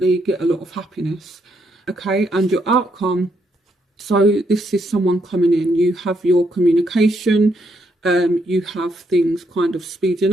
get a lot of happiness, okay? And your outcome, so this is someone coming in. You have your communication, you have things kind of speeding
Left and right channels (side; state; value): both; normal; correlation 0.76